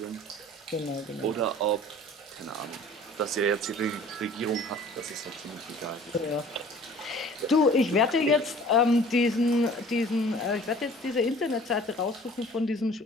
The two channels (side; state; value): both; normal; correlation 0.48